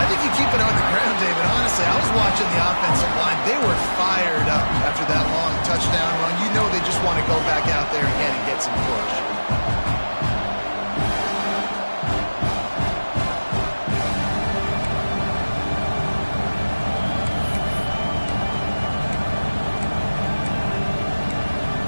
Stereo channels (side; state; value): both; inverted; correlation -1.00